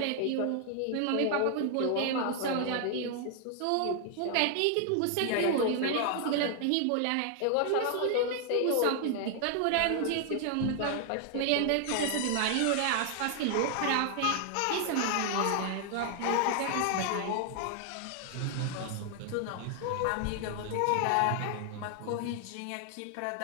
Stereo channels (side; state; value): both; different; correlation 0.00